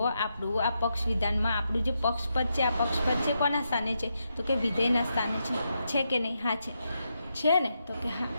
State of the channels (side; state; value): both; inverted; correlation -0.83